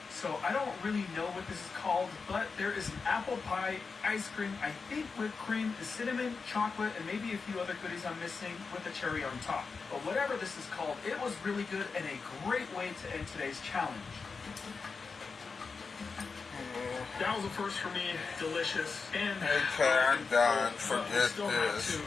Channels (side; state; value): right; quieter; 4.8 dB